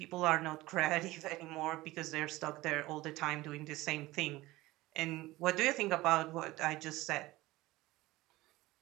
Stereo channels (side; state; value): left; quieter; 18.8 dB